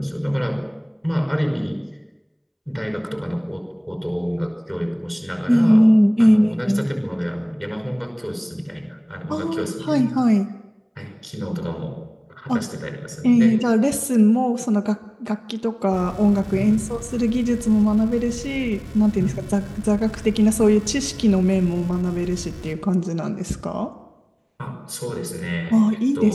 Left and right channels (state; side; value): identical; both; correlation 1.00